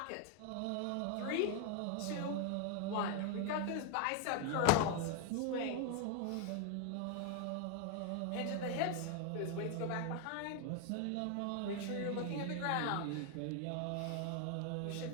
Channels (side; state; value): both; different; correlation 0.01